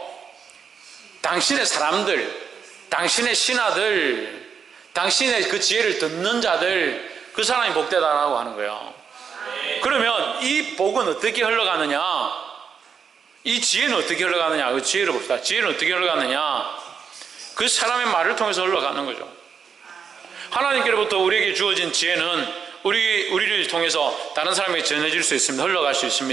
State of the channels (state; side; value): quieter; left; 6.6 dB